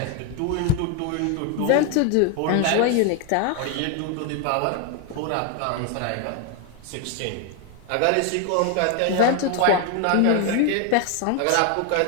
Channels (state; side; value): different; both; correlation 0.01